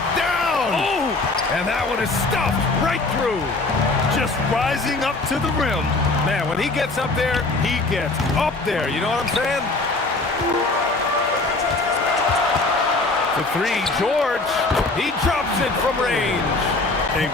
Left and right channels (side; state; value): right; quieter; 3.3 dB